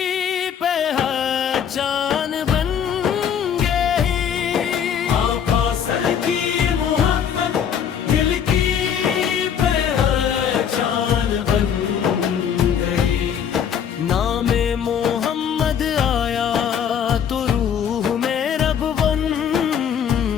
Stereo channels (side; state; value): right; quieter; 8.2 dB